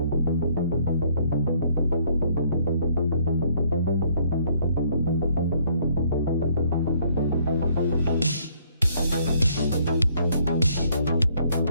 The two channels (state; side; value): inverted; both; correlation -0.65